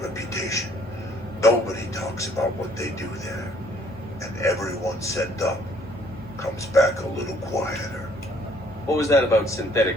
reputation. Nobody talks about what they do there. And everyone sent up comes back a little quieter. What was that about synthetic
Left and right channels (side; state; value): both; normal; correlation 0.62